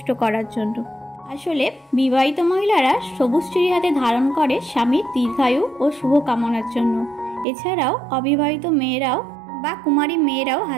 করার জন্য। আসলে বিবাহিত মহিলারা সবুজ চুড়ি হাতে ধারণ করে স্বামীর দীর্ঘায়ু ও শুভ কামনার জন্য। এছাড়াও অবিবাহিত মেয়েরাও বা কুমারী মেয়েরাও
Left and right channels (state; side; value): drops out; left; at 7.5 s